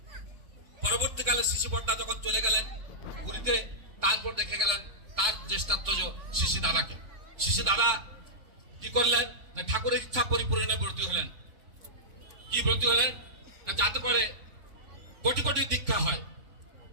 পরবর্তীকালে শ্রী বড়দা যখন চলে গেলেন পুরীতে, তারপর দেখে গেলেন তার জ্যেষ্ঠাত্মজ শ্রী দাদাকে। শ্রী দাদা কি করলেন না, ঠাকুরের ইচ্ছা পরিপূরণে ব্রতী হলেন। কি ব্রতী হলেন না, যাতে করে কোটি কোটি দীক্ষা হয়।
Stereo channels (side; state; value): left; late; 3.7 ms